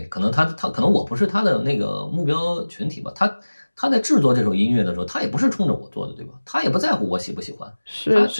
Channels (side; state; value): both; inverted; correlation -1.00